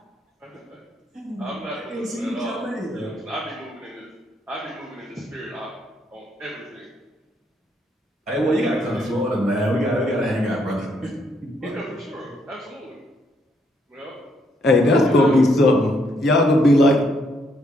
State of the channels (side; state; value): both; normal; correlation 0.73